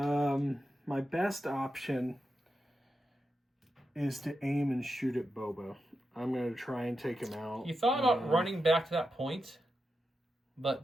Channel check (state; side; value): normal; both; correlation 0.88